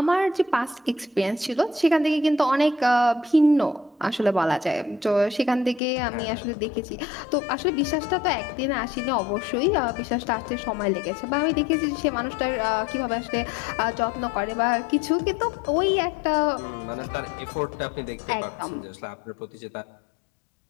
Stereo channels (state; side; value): drops out; right; at 5.8 s